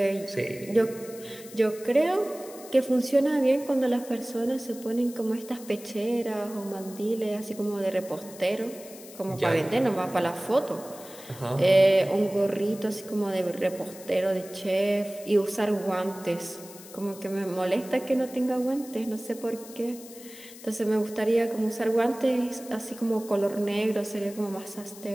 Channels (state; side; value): noise; left; hiss, 17 dB below the sound